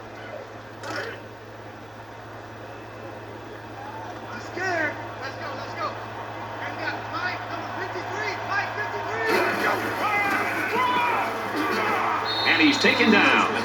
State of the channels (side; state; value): right; noise; rumble, 29 dB below the sound